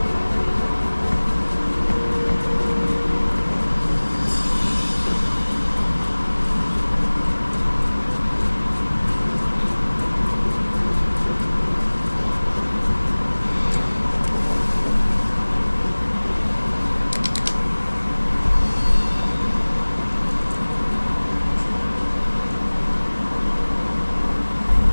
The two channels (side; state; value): both; inverted; correlation -1.00